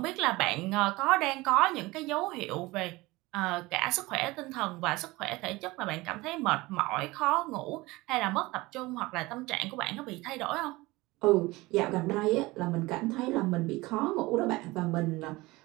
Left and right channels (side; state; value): left; quieter; 21.1 dB